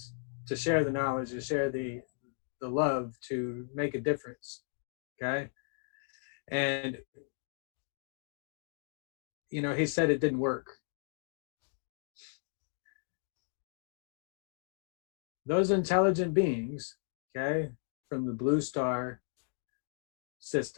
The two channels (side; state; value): right; silent; 54 dB below the other